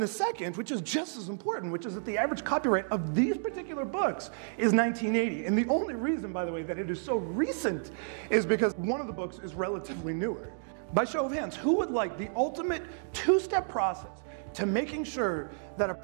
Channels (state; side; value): silent; left; digital silence